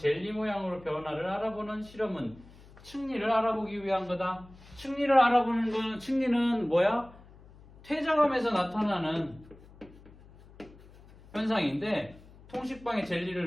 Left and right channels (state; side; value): noise; left; hum, 22 dB below the sound